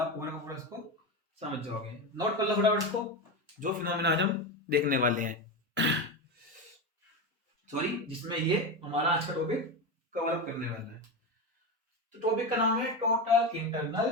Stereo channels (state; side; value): normal; both; correlation 0.18